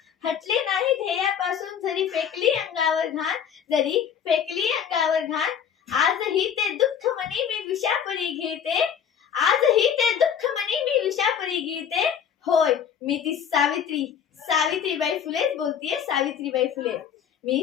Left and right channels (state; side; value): quieter; right; 8.2 dB